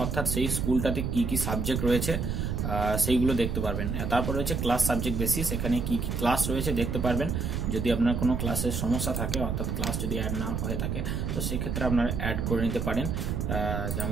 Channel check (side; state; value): right; noise; rumble, 1 dB below the sound